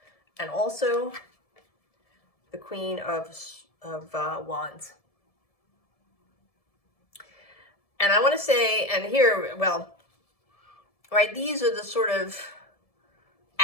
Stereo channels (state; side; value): late; right; 1.7 ms